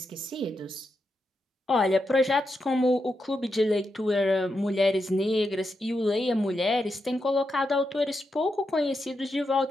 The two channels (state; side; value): normal; both; correlation 0.85